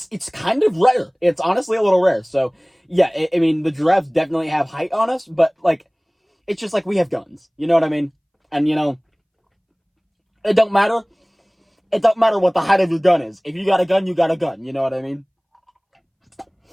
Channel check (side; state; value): both; identical; correlation 1.00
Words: kind of rare. It's honestly a little rare. So yeah, I mean, the giraffes definitely have height on us, but like, it's just like we have guns. You know what I mean? And you know, it don't matter. It don't matter what the height of your gun is. If you got a gun, you got a gun. You know what I mean?